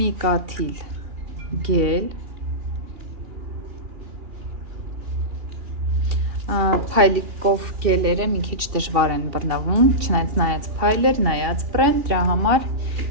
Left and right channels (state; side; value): late; left; 2.7 ms